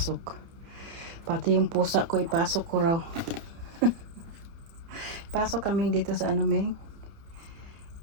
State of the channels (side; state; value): left; late; 30 ms